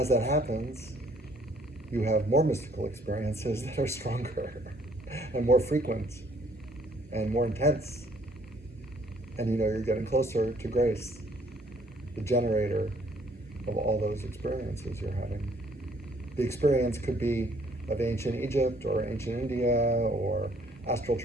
that happens, you have more mystical experiences that are stronger and more frequent and more intense. And you're getting closer to grace, the generator of all those experiences you're having. The experience could be of ancient Egypt or ancient India or astral,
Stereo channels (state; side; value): normal; both; correlation 0.62